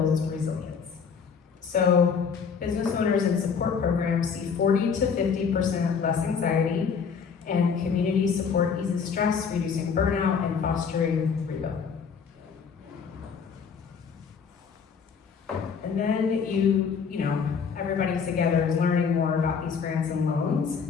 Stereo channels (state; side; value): quieter; right; 6.2 dB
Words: resilience. So business owners in support programs see 40 to 50% less anxiety, and community support eases stress, reducing burnout and fostering rebuild. And then you know, everybody's together is learning more about these grants and loans